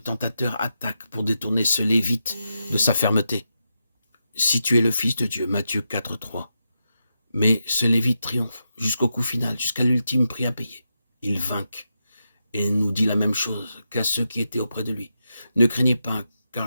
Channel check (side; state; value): both; inverted; correlation -0.86